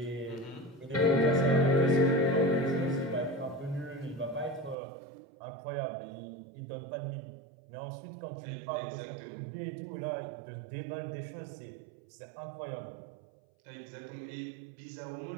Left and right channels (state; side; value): drops out; left; at 4.8 s